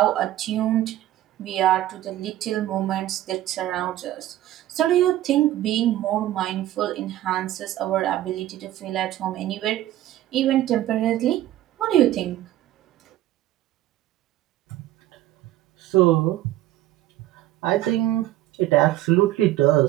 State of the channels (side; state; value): left; quieter; 14.2 dB